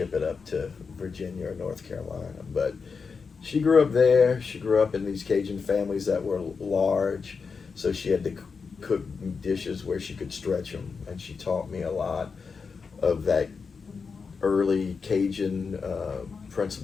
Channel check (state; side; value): quieter; right; 5.2 dB